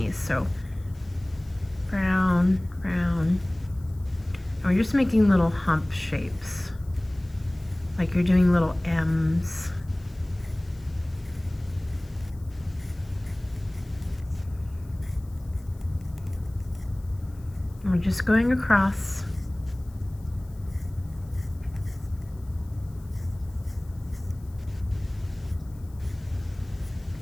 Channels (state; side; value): noise; left; hiss, 29 dB below the sound